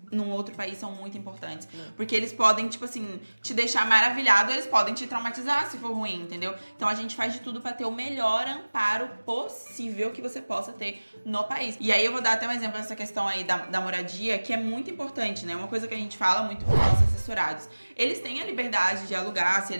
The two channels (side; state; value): both; inverted; correlation -1.00